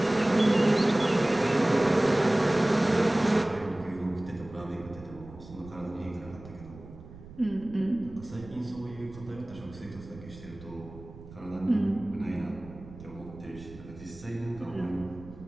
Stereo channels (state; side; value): noise; right; rumble, 17 dB below the sound